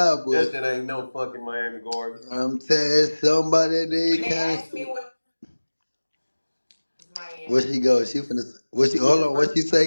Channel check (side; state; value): both; inverted; correlation -1.00